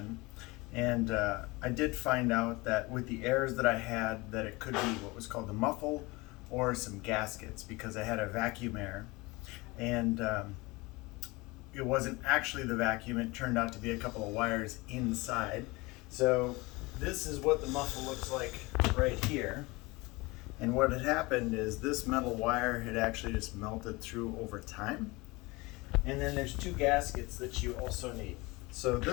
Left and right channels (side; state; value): right; quieter; 23.7 dB